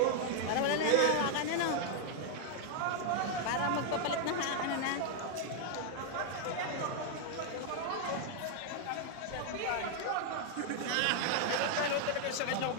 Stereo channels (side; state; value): both; different; correlation 0.00